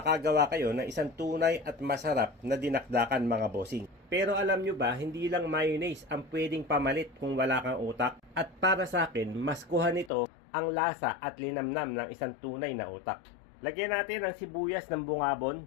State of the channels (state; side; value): drops out; right; at 10.1 s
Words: kayo ng isang tunay at masarap na dinakdakan mga bossing. Pero alam nyo ba, hindi lang mayonnaise ang pwedeng pamalit kung wala kang utak. At para sa akin, mas kuha nito ang lasa at linamnam ng isang tunay na utak. Lagyan natin ang sibuyas ng bungabon,